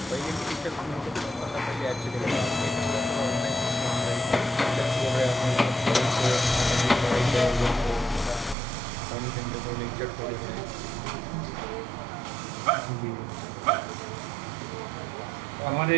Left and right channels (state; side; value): drops out; left; at 8.6 s